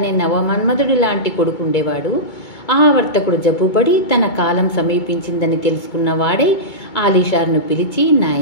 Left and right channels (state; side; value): late; right; 2.2 ms